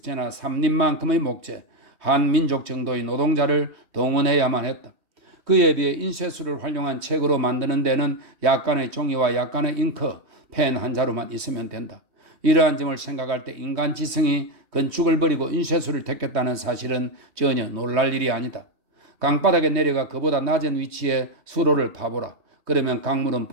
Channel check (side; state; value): left; late; 3.1 ms